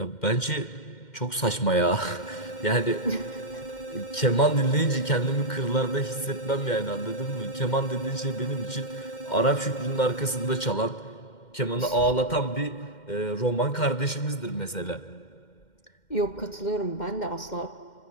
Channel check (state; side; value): late; right; 2.1 ms